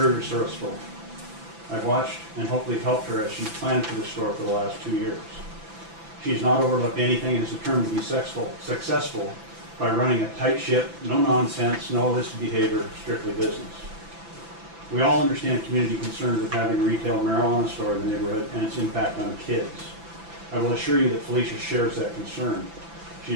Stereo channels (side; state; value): left; late; 6.0 ms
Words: resourceful. I've watched and hopefully helped her as she's planned for the store for the last 2 years. She's not overlooked anything and is determined to be successful by running a tight ship, no nonsense, no illicit behavior, strictly business. We all understand community concerns with having a retail marijuana store in the neighborhood and its impact on kids. I will assure you that Felicia shares that concern. She